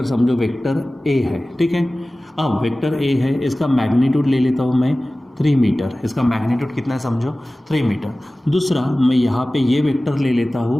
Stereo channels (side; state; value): both; normal; correlation 0.97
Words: समझो वेक्टर ए है। ठीक है, अब वेक्टर ए है, इसका मैग्नीट्यूड ले लेता हूँ मैं 3 मीटर, इसका मैग्नीट्यूड कितना है समझो 3 मीटर। दूसरा मैं यहाँ पे ये वेक्टर ले लेता